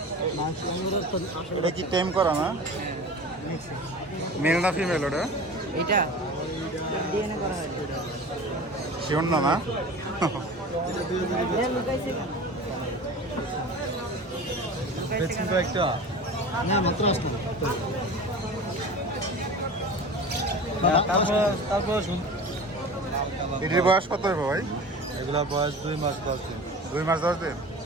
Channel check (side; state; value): both; normal; correlation 0.36